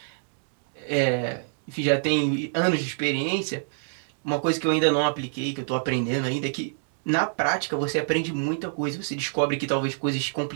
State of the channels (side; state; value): left; silent; digital silence